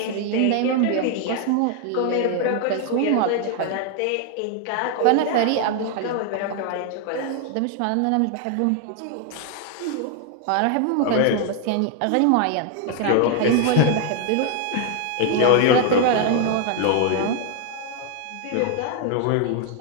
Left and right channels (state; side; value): different; both; correlation 0.00